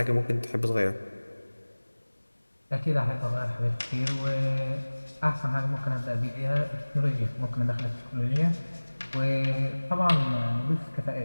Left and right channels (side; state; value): both; inverted; correlation -1.00